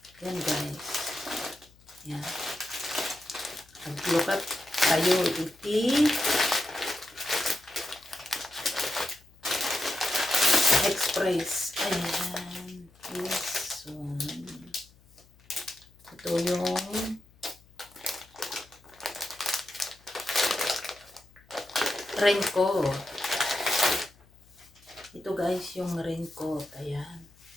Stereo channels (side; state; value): left; noise; hum, 28 dB below the sound